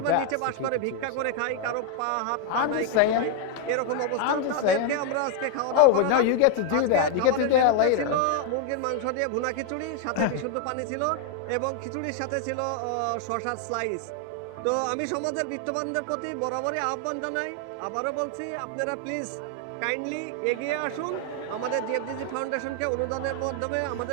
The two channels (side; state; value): both; different; correlation 0.00